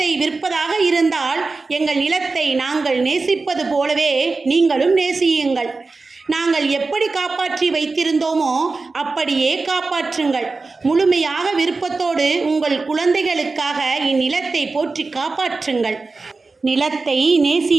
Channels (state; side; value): quieter; left; 3.9 dB